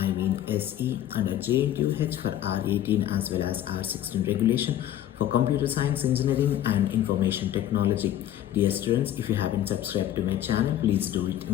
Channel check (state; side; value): quieter; right; 12.0 dB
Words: SE under Jntuh for R18 as well as R16 regulation for Computer Science Engineering and Information Technology. Dear students, if you haven't subscribed to my channel, please do it